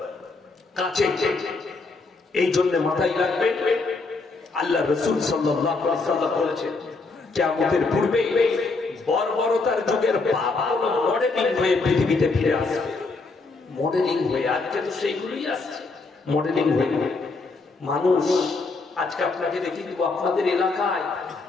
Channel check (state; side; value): quieter; right; 3.8 dB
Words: কাছে। এই জন্য মাথায় রাখবেন, আল্লাহ রাসূল সাল্লাল্লাহু আলাইহি ওয়াসাল্লাম বলেছেন কিয়ামতের পূর্বে বর্বরতার যুগের পাপগুলো মডেলিং হয়ে পৃথিবীতে ফিরে আসবে। মডেলিং হয়ে, আজকে তো সেইগুলোই আসছে মডেলিং হয়ে। মানুষ আজকে আপনাকে দেখে দিব, আপনাদের এলাকায়